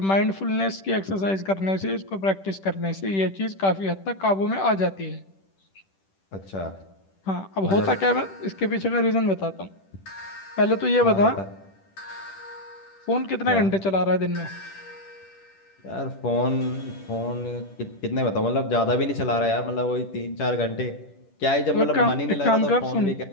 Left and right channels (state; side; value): late; right; 10 ms